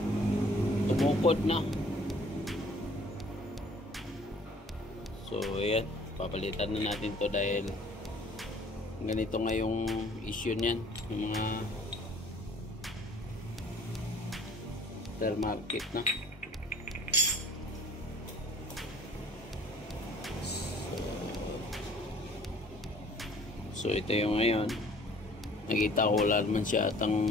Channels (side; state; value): both; normal; correlation 0.54